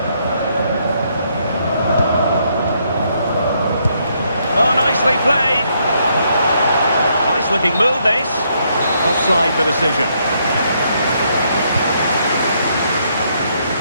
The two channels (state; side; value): inverted; both; correlation -0.74